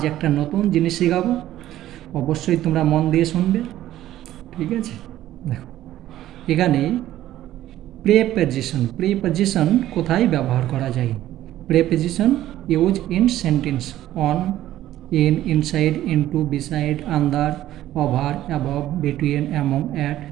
একটা নতুন জিনিস শেখাবো। অবশ্যই তোমরা মন দিয়ে শুনবে, ঠিক আছে? দেখো, এখানে প্রেপজিশন কোথায় ব্যবহার করা যায়? Preposition use in sentence: on, in, inside, into, beside, under, over, above, between, among, at.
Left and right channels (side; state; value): left; quieter; 13.5 dB